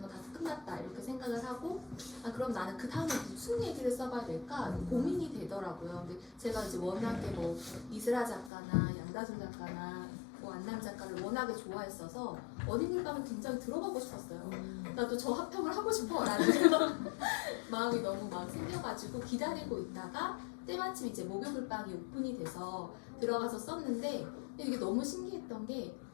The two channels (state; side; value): drops out; right; at 8.5 s